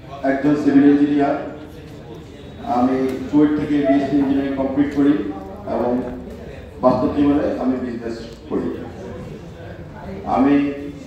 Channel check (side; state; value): both; identical; correlation 1.00